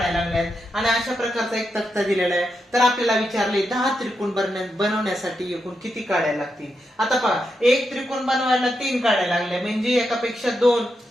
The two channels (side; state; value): both; normal; correlation 0.85